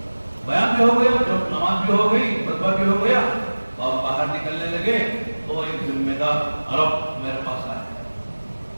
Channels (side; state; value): both; inverted; correlation -1.00